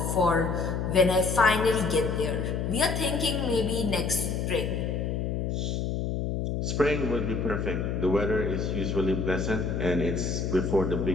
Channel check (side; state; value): left; noise; hum, 1 dB below the sound